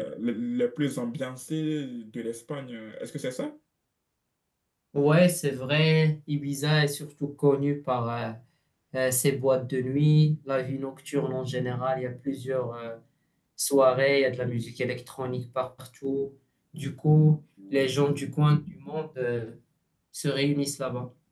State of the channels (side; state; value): both; identical; correlation 1.00